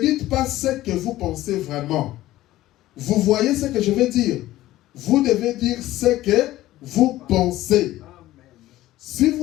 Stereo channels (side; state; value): right; quieter; 15.6 dB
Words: pas ce que vous pensez vraiment. Vous voyez ce que je veux dire? Vous devez dire ce que vous pensez. Si